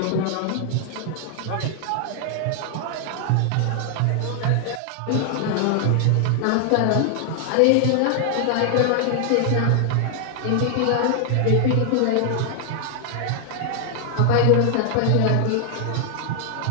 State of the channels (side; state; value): both; different; correlation 0.00